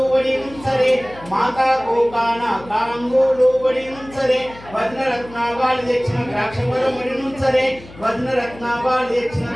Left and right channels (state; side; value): noise; left; hum, 19 dB below the sound